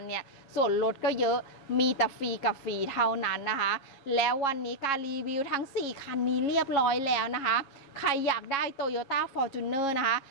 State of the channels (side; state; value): right; late; 7.3 ms